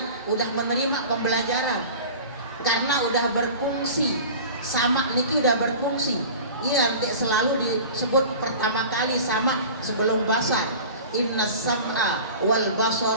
udah menerima pembelajaran karena udah berfungsi sama niki udah berfungsi. Iya nanti selalu disebut pertama kali sama sebelum basar. Inna sam'a wal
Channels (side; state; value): both; inverted; correlation -0.38